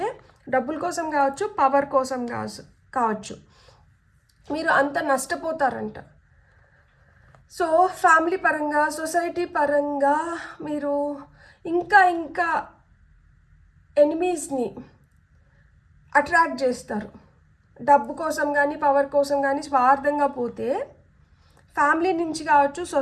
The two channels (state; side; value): identical; both; correlation 1.00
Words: డబ్బుల కోసం కావచ్చు, పవర్ కోసం కావచ్చు, మీరు అంత నష్టపోతారంట. సో ఫ్యామిలీ పరంగా, సొసైటీ పరంగా మీరు ఇంకా ఎనిమీస్ని అట్రాక్ట్ చేస్తారు. డబ్బు కోసం కానీ పవర్ కోసం కానీ స్వార్థంగా పోతే ఫ్యామిలీ నుంచి కావచ్చు,